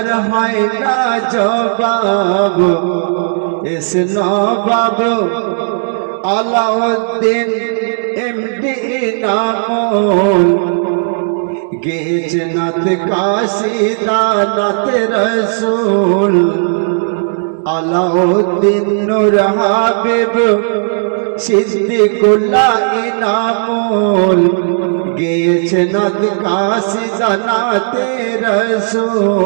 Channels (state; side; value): silent; left; digital silence